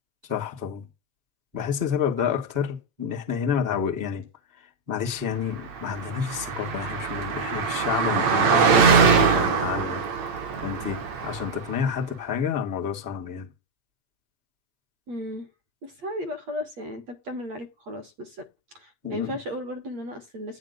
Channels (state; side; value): late; left; 8.8 ms